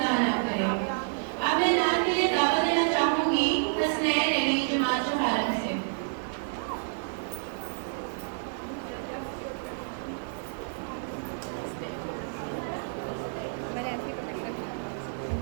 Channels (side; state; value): left; silent; 58 dB below the other